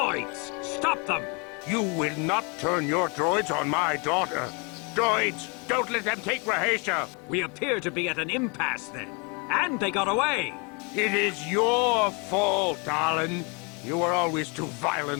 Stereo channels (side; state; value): right; quieter; 32.3 dB